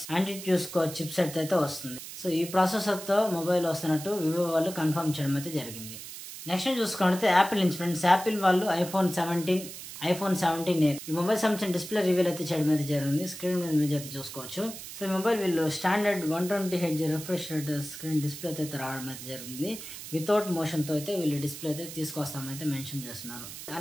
యాంటిట్యూడ్ స్కోర్ చిప్ సెట్ అయితే వస్తుంది. సో ఈ ప్రాసెసర్ తో మొబైల్ వస్తున్నట్టు వివో వాళ్ళు కన్ఫర్మ్ చేయడం అయితే జరిగింది. నెక్స్ట్ చూసుకుంటే యాపిల్ నుంచి ఫ్రెండ్స్, యాపిల్ వాళ్ళు iPhone 17 ఈ మొబైల్ సంబంధించిన డిస్ప్లే రివీల్ అయితే చేయడం అయితే జరిగింది. స్క్రీన్ మీద ఇమేజ్ అయితే చూసుకోవచ్చు. సో ఈ మొబైల్ వీళ్ళు standard 120Hz refresh rate screen display అయితే రావడం అయితే జరిగింది. వితౌట్ మోషన్ తో అయితే వీళ్ళు డిస్ప్లే అయితే తీసుకొస్తామైతే మెన్షన్ చేస్తున్నారు.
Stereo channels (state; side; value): noise; right; hiss, 11 dB below the sound